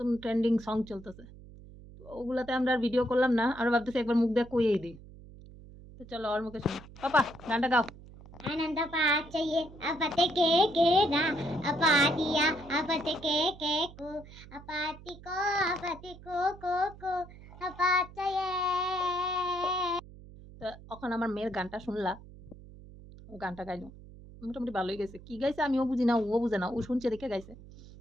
ট্রেন্ডিং সং চলতেছে। তো ওগুলাতে আমরা আর ভিডিও করলাম না, আর ভাবতেছি একবার মুখ দিয়ে কইয়েই দিই। তো চলো ওর মুখে শুনি। পাপা গানটা গাও। आनंद पाचये अपते के ना अपातिया अपते के को अपति को अपाचये। তো এখন আমার মেয়ের গানটা শুনলা, ও গানটা গাইলো মোটামুটি ভালোই গেছে। কি গাইছে আমিও বুঝি না, ও বুঝে না, ও শুনছে দেখে গাইছে।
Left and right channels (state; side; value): noise; right; hum, 18 dB below the sound